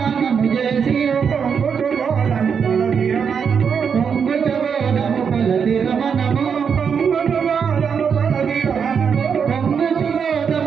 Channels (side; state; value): left; quieter; 6.7 dB